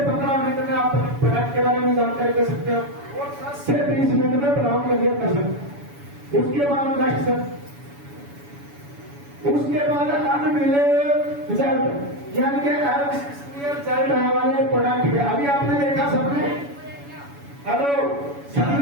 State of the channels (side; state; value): left; late; 7.1 ms